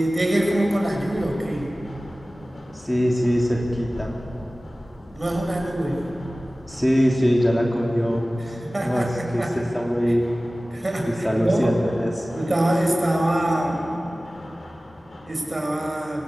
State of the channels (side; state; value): both; normal; correlation 0.97